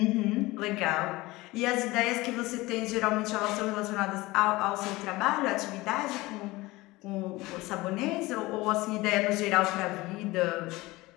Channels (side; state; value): right; quieter; 20.5 dB